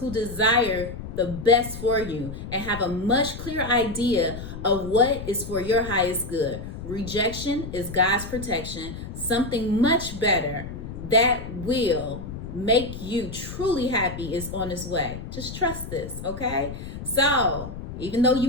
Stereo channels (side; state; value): left; noise; rumble, 9 dB below the sound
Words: desire the best for you and have a much clearer idea of what is for your highest good. Rejection is God's protection. Something much better that will make you truly happy is on its way. Just trust this, okay? So, even though you